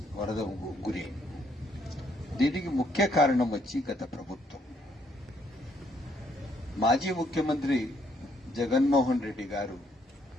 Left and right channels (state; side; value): normal; both; correlation 0.70